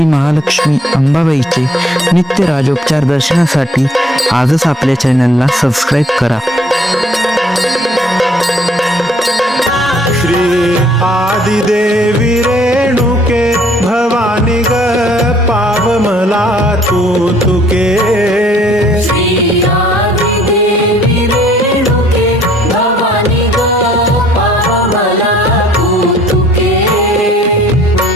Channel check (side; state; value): both; normal; correlation 0.60